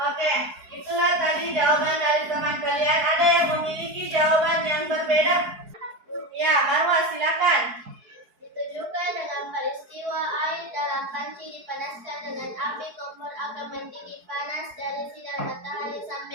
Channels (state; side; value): late; left; 4.6 ms